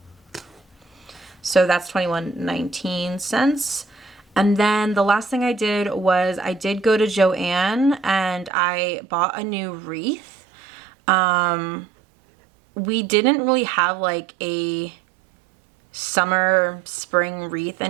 So that's 21.19 cents. And then the last thing I did was I did go to Joann and I bought a new wreath. We didn't really have like a summer, spring wreath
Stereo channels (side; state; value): left; drops out; at 8.5 s